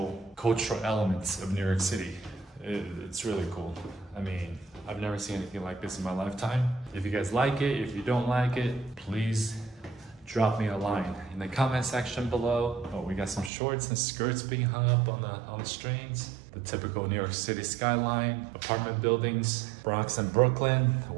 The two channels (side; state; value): left; drops out; at 13.5 s